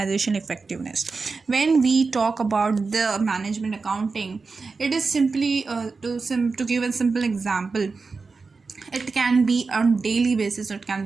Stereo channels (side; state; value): left; quieter; 4.4 dB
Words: effectiveness. When we talk about the management accounting, it is simply to give a simple example. It can be on daily basis or it can